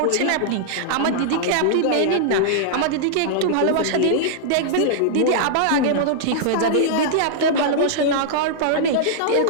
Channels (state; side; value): different; both; correlation -0.01